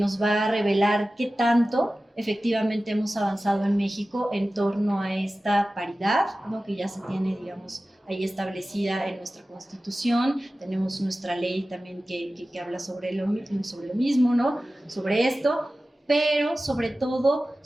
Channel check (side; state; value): both; normal; correlation 0.96